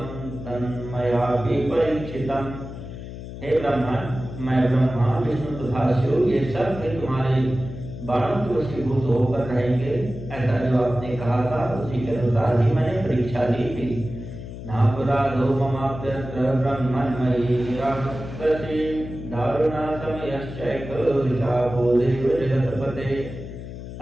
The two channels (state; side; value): noise; left; hum, 10 dB below the sound